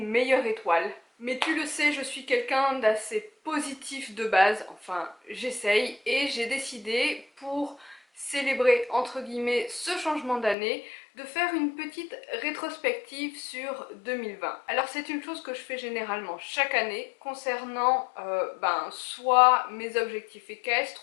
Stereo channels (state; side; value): drops out; right; at 10.6 s